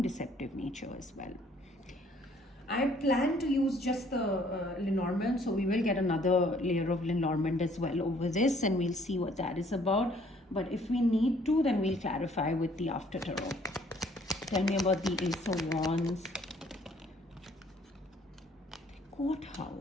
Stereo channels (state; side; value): normal; both; correlation 0.61